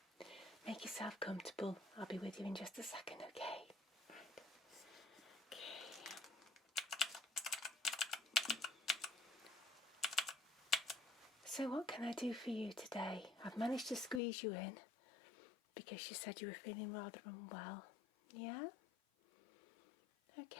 Make yourself comfortable. I'll be with you in just a second, okay? So what can I do for you today? I've managed to squeeze you in because you said you were feeling rather unwell. Yeah?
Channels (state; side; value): drops out; right; at 14.2 s